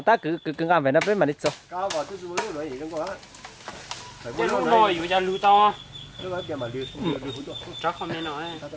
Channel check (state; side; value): identical; both; correlation 1.00